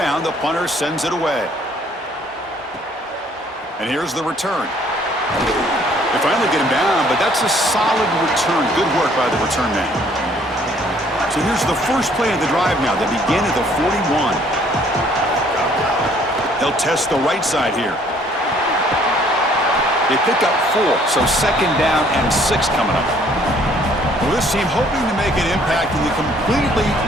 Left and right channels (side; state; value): both; normal; correlation 0.61